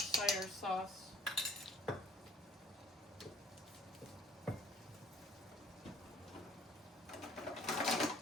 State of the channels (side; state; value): both; normal; correlation 0.57